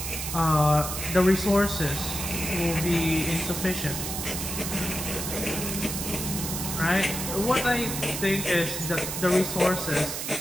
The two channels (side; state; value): right; noise; hiss, 4 dB below the sound